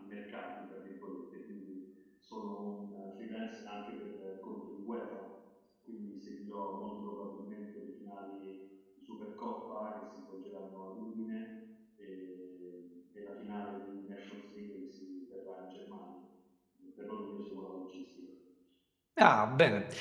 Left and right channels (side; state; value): both; identical; correlation 1.00